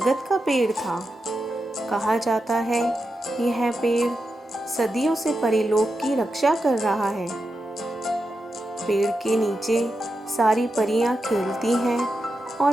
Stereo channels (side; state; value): both; normal; correlation 0.88